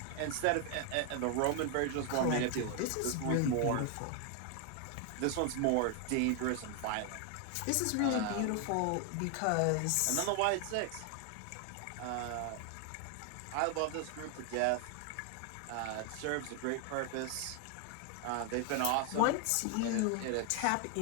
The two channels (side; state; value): both; different; correlation 0.00